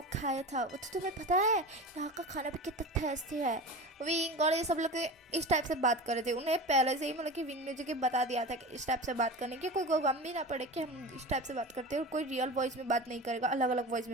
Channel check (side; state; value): both; normal; correlation 0.30